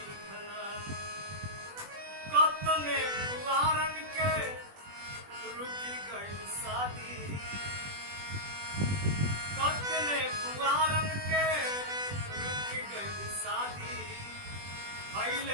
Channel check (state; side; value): late; left; 20 ms